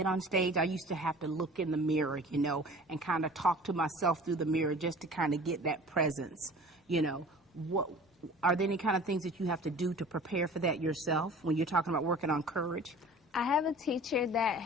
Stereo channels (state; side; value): normal; both; correlation 0.44